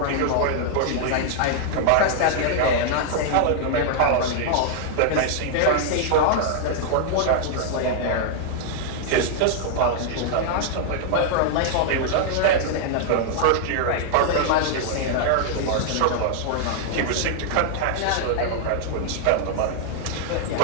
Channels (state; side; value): different; both; correlation -0.01